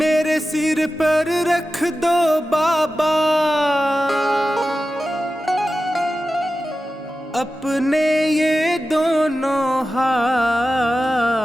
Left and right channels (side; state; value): both; normal; correlation 0.93